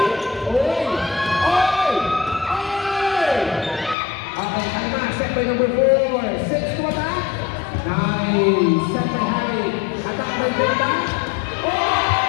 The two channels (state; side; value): drops out; right; at 4.0 s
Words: Uy! Uy! Uy! Okay, kalma. Set by number 4. 6 to attack. Nice. Set by Harry. Attack by Delta.